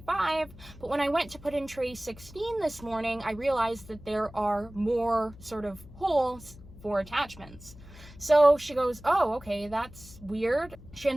But when I went to put in tray 16 this morning, I realized that there are more sort of holes for attachments. So she goes, oh, okay, that's weird. She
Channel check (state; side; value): noise; left; hum, 19 dB below the sound